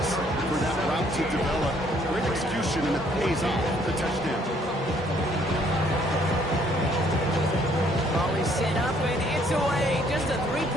for that route to develop. Great execution, and it pays off the touchdown. Ball is set up, and it's away. Just a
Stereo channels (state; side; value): normal; both; correlation 0.64